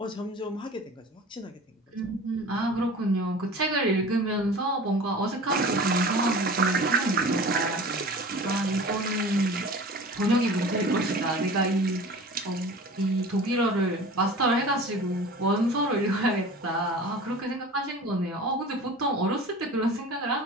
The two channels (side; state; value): both; normal; correlation 0.39